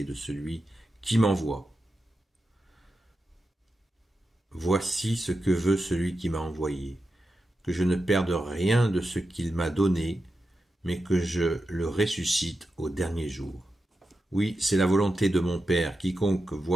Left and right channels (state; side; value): normal; both; correlation 0.90